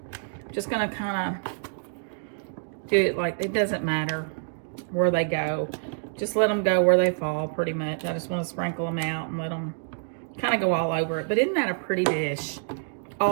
Just going to kind of do it like, it doesn't matter where they go. Just let them go where they fall, pretty much. I just want to sprinkle them out and let them kind of go all over it. But isn't that a pretty dish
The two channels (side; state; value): left; silent; digital silence